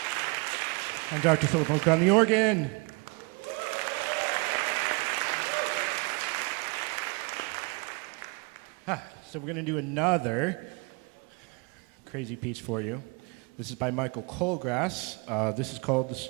And Dr. Philip Hoch on the organ. So we're going to do another crazy piece for you. This is by Michael Colgrass. This is called The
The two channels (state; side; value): quieter; left; 29.1 dB